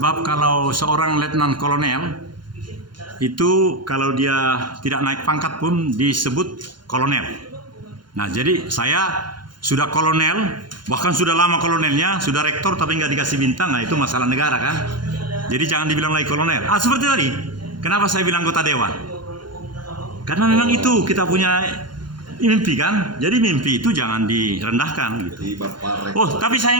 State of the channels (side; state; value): left; late; 0.71 ms